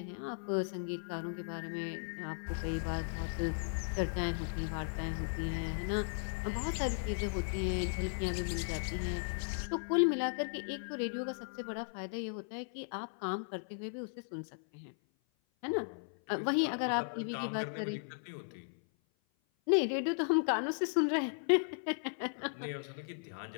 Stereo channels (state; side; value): silent; right; 53 dB below the other